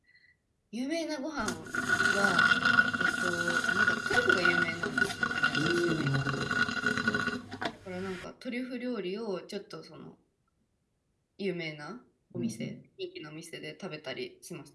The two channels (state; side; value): identical; both; correlation 1.00